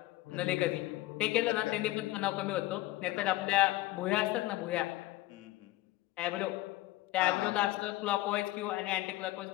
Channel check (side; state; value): right; quieter; 17.6 dB